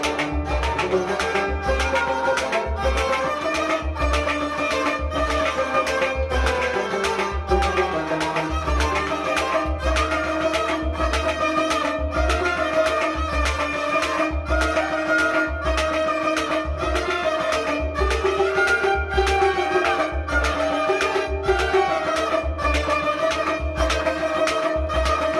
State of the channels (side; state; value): both; identical; correlation 1.00